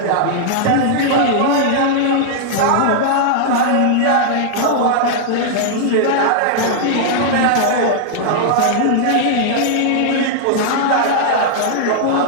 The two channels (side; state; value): both; different; correlation -0.01